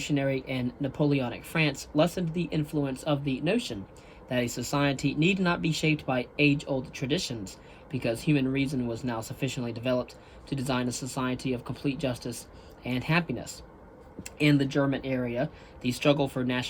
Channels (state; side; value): identical; both; correlation 1.00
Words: and Napoleonic France lessened the influence of the notion that a society need not be shaped by age-old traditions, because human reason was now sufficiently developed to design a society of complete justice and happiness. In the German area, the struggle for